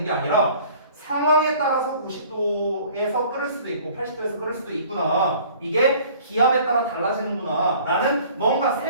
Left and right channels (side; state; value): both; inverted; correlation -0.51